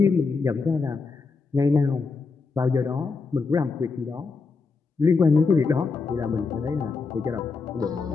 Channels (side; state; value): right; quieter; 4.5 dB